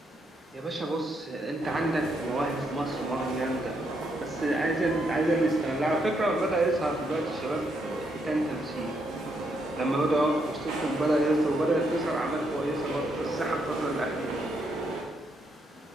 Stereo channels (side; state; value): both; normal; correlation 0.77